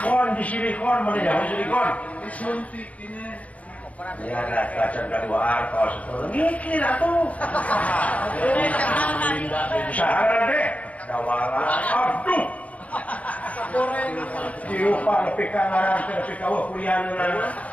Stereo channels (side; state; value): right; late; 0.067 ms